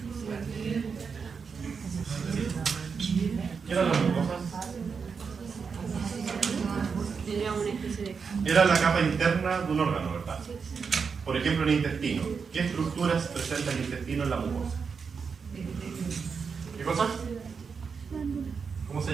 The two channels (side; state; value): left; quieter; 5.7 dB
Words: ¿Qué eran las mucosas? Era la capa interna de un órgano, ¿verdad? Por ejemplo, el intestino. ¿Qué estructuras presenta el intestino en la mucosa? ¿Qué cosas? ¿Cómo se